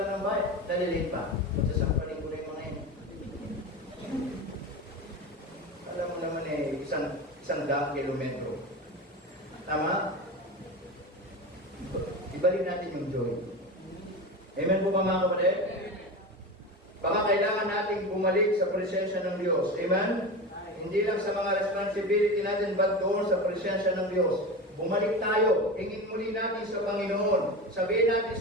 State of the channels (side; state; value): both; normal; correlation 0.26